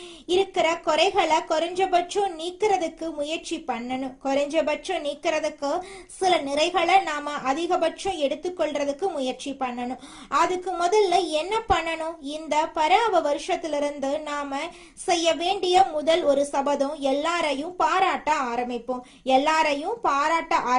இருக்கிற குறைகளை குறைஞ்சபட்சம் நீக்கிறதுக்கு முயற்சி பண்ணணும். குறைஞ்சபட்சம் நீக்கிறதுக்கு சில நிறைகளை நாம அதிகபட்சம் எடுத்துக்கொள்றதுக்கு முயற்சி பண்ணணும். அதுக்கு முதல்ல என்ன பண்ணணும்? இந்த பராப வருஷத்திலிருந்து நாம செய்ய வேண்டிய முதல் ஒரு சபதம், எல்லாரையும் பாராட்ட ஆரம்பிப்போம். எல்லாரையும் பாராட்ட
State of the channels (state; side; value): identical; both; correlation 1.00